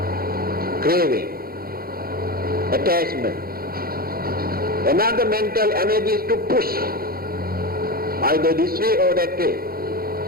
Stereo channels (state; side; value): late; left; 0.43 ms